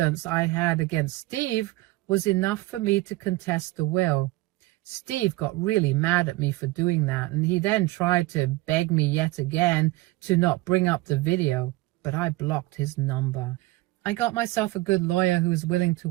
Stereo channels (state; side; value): quieter; left; 19.5 dB